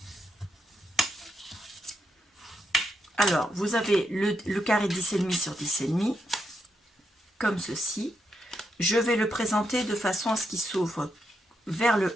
Alors, vous avez le carré 10,5 sur 10,5, comme ceci. Je vais le présenter de façon à ce qu'il s'ouvre vers le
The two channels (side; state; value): both; normal; correlation 0.82